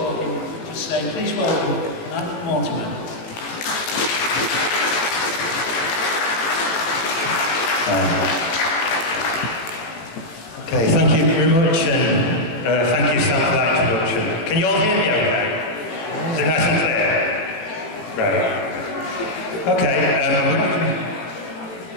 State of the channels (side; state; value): right; late; 18 ms